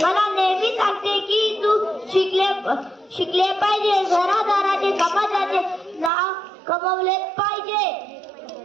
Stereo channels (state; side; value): drops out; left; at 6.1 s